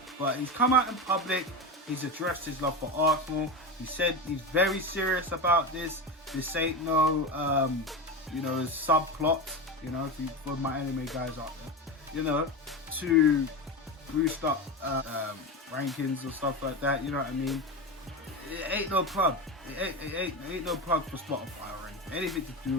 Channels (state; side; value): normal; both; correlation 0.21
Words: But he's come out in public. He's addressed his love for Arsenal. He said he's very serious about this. This ain't no, subplot, for my anime guys out there, to boost up rankings or stuff like that, you know what I mean? It ain't no plug. It ain't no plug for Spotify or anything to do